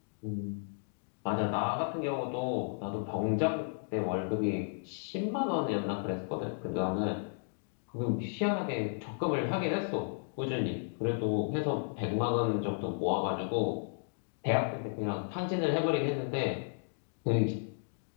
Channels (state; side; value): silent; right; digital silence